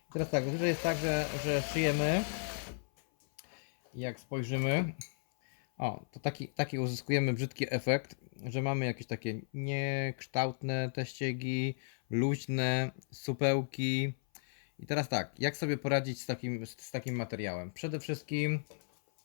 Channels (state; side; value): silent; right; 55 dB below the other